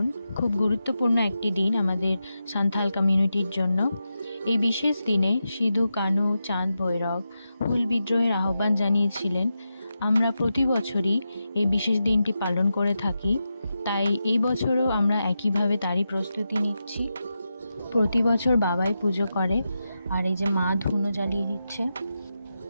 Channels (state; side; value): inverted; both; correlation -0.89